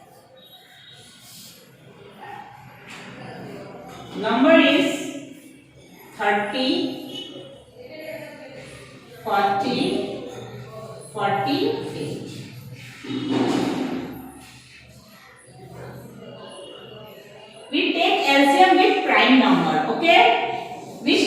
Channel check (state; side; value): identical; both; correlation 1.00